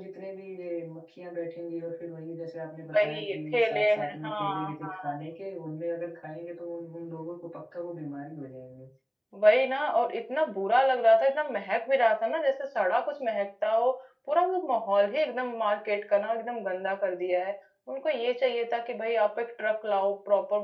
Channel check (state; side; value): identical; both; correlation 1.00